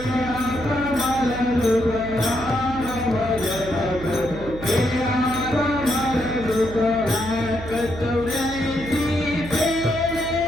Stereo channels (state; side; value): noise; right; hum, 12 dB below the sound